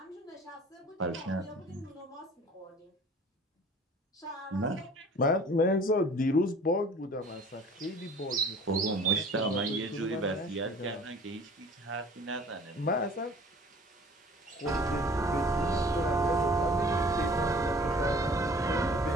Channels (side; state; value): both; normal; correlation 0.49